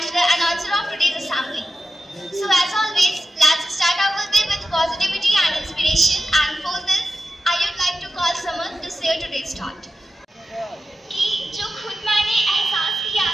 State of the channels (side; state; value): both; normal; correlation 0.91